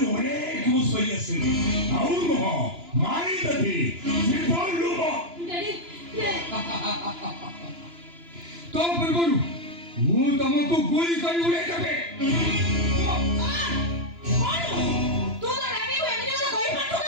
ଅନେକ ମୁଁ ସହି ଆସିଲି। ଆଉ ନୁହଁ ମାରିଦେବି ଜୀବନରୁ। ତ ପୂର୍ବରୁ ମୁଁ ତମକୁ ଗୁଳି କରି ଉଡ଼େଇଦେବି।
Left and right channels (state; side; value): late; left; 2.9 ms